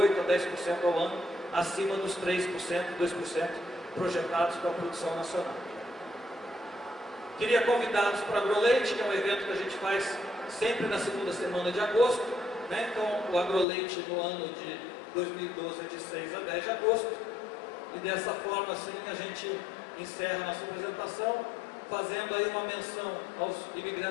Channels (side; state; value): right; drops out; at 13.7 s